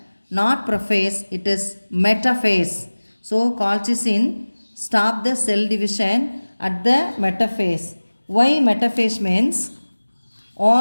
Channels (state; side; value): inverted; both; correlation -1.00